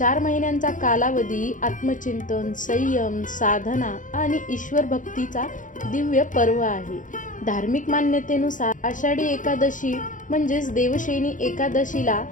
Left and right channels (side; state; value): right; late; 0.37 ms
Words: महिन्यांचा कालावधी आत्मचिंतन, संयम, साधना आणि ईश्वर भक्तीचा दिव्य पर्व आहे. धार्मिक मान्यतेनुसार आषाढी एकादशी म्हणजेच देवशयनी एकादशीला